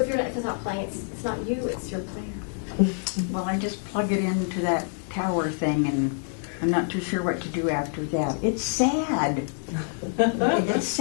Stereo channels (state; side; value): silent; right; 61 dB below the other